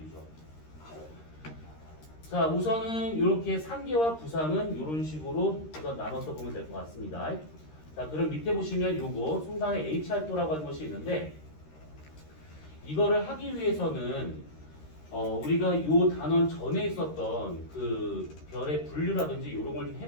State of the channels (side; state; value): right; late; 13 ms